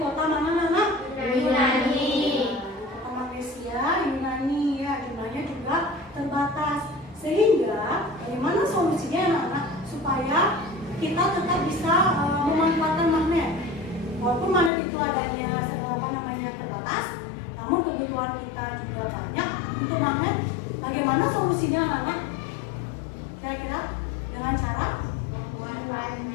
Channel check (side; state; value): right; drops out; at 14.7 s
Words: mana anak? Yunani. Kota Malaysia, Yunani ya, jumlahnya juga terbatas. Sehingga bagaimana solusinya anak-anak supaya kita tetap bisa memanfaatkan magnet? Walaupun magnet itu adanya terbatas, namun kebutuhan kita juga banyak untuk magnet. Bagaimana solusinya anak-anak? Kira-kira dengan cara apa?